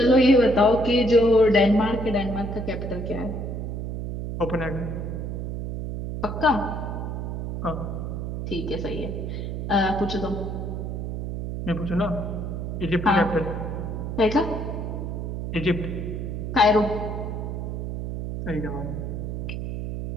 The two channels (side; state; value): right; noise; hum, 4 dB below the sound